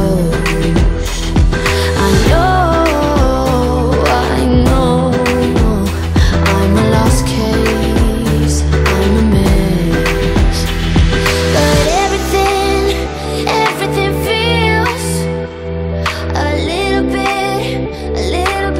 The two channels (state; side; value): identical; both; correlation 1.00